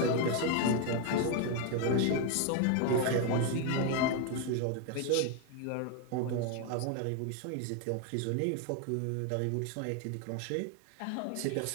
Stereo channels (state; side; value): different; both; correlation 0.01